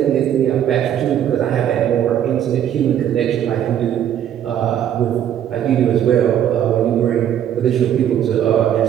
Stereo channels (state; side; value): quieter; left; 10.1 dB